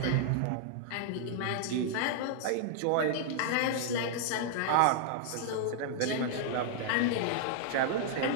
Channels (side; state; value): both; different; correlation -0.01